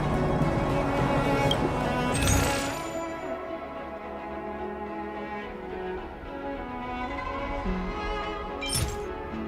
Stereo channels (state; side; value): identical; both; correlation 1.00